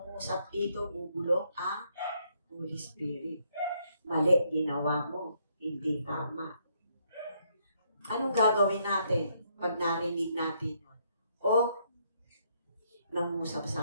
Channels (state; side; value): inverted; both; correlation -0.72